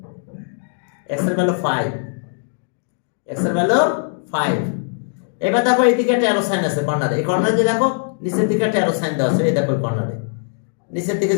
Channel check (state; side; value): silent; right; digital silence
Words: x এর ভ্যালু 5, x এর ভ্যালু 5। এবার দেখো এইদিকে একটা অ্যারো সাইন আছে কর্নারে, এই কর্নারে যে দেখো নিচের দিকে একটা অ্যারো সাইন দেওয়া আছে, এই দেখো কর্নারে নিচের দিকে